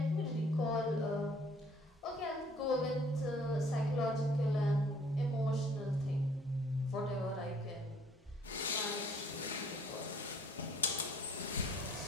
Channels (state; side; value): normal; both; correlation 0.59